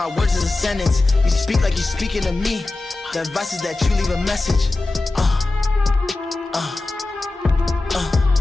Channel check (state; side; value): quieter; right; 3.1 dB